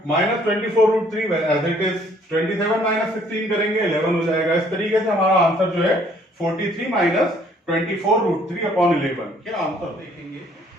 minus 24√3 as it is, 27 minus 16 करेंगे 11 हो जाएगा। इस तरीके से हमारा आंसर जो है 43 माइनस 24√3 अपॉन 11। क्या आंसर देखेंगे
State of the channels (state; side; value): normal; both; correlation 0.61